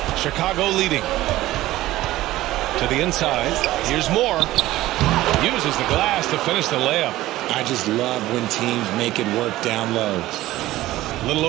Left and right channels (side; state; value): left; quieter; 16.1 dB